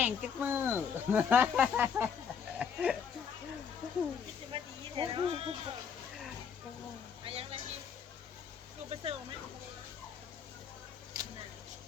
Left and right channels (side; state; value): right; quieter; 6.9 dB